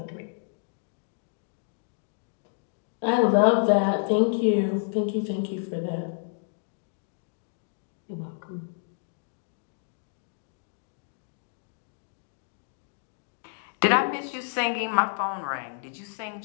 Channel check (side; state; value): right; silent; digital silence